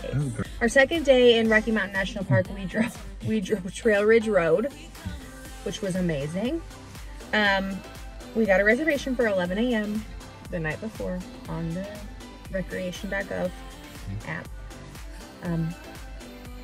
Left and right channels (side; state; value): both; identical; correlation 1.00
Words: Our second day in Rocky Mountain National Park, we drove Trail Ridge Road, which was amazing. We got a reservation for 11 a.m. the night before on the recreation.gov app.